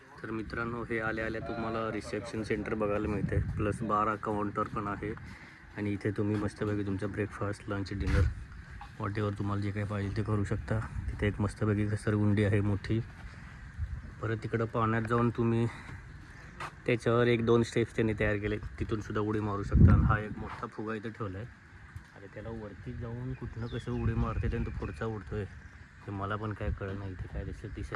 तर मित्रांनो, हे आल्या तुम्हाला रिसेप्शन सेंटर बघायला मिळते, प्लस 12 काउंटर पण आहे. आणि इथे तुम्ही मस्तपैकी तुमचा ब्रेकफास्ट, लंच, डिनर वॉटेवर तुम्हाला जे काही पाहिजे ते करू शकता. तिथे एक मस्तपैकी घसरगुंडी आहे मोठी. परत तिकडं पाण्यात जाऊन तुम्ही त्याच्यावर 1-2 स्टेप्स त्यांनी तयार केले, तिथून सुद्धा उडी मारू शकता. आणि हा एक मोठा फुगा इथं ठेवला आहे. आणि त्याला वरती जाऊन कुठनं कसं उडी मारते त्यानं तो पुढचा उडतो आहे, ते मला पण काय कळलं नाही, ते काय दिसत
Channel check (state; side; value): identical; both; correlation 1.00